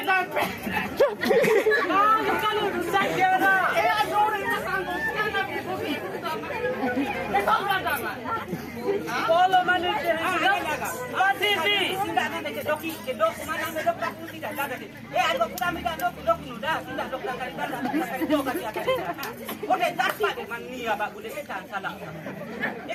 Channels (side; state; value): both; identical; correlation 1.00